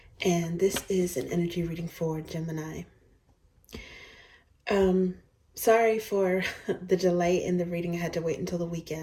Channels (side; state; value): both; identical; correlation 1.00